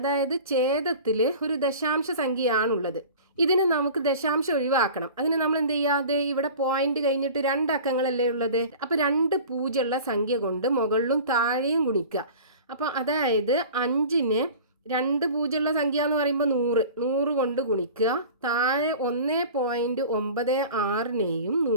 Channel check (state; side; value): inverted; both; correlation -0.40